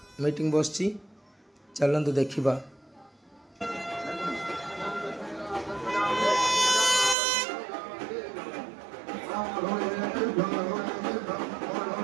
ମିଟିଂ ବସିଛି, ଚାଲନ୍ତୁ ଦେଖିବା।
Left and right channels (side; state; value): left; drops out; at 7.2 s